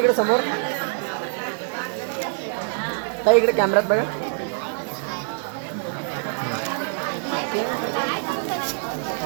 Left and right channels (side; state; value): left; silent; digital silence